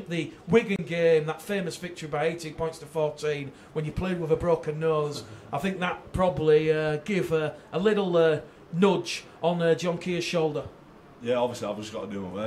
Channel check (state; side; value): identical; both; correlation 1.00